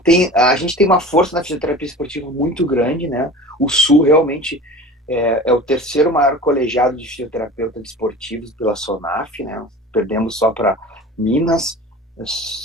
A gente tem uma força na fisioterapia esportiva muito grande, né? O Sul realmente é o terceiro maior colegiado de fisioterapeutas esportivos pela SONAF, né? Perdemos só para Minas,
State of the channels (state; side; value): normal; both; correlation 0.37